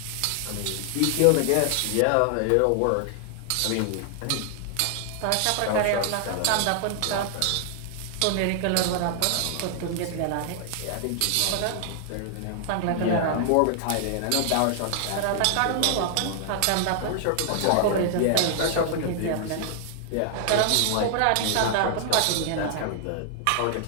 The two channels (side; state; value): both; different; correlation 0.00